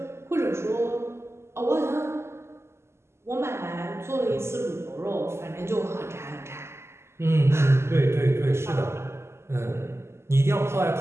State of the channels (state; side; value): late; left; 0.13 ms